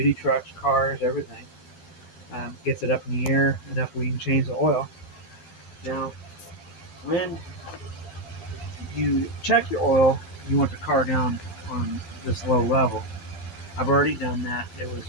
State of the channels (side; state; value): right; late; 12 ms